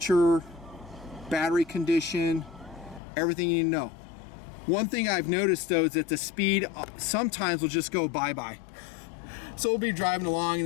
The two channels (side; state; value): right; drops out; at 3.0 s